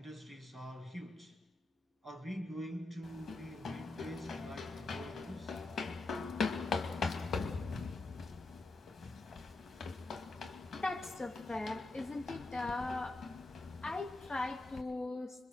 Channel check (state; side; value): quieter; right; 3.1 dB